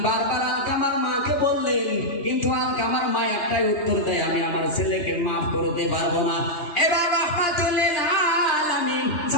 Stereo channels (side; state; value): right; late; 2.4 ms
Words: বারবার আলকামার মাকে বললেন, কিন্তু আলকামার মা একটাই উত্তর দেয়, আমি আমার ছেলেকে মাফ করতে পারবো না। এবার রহমাতুল লিল আলামিন